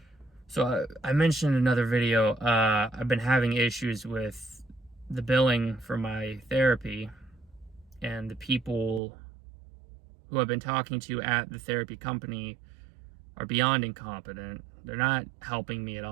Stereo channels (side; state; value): left; drops out; at 9.0 s